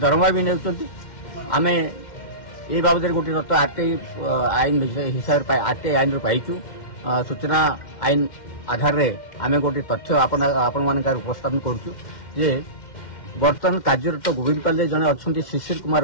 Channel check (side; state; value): right; late; 2.1 ms